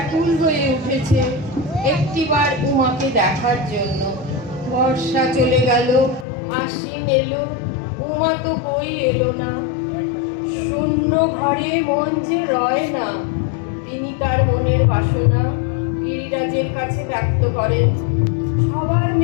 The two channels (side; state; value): right; drops out; at 6.2 s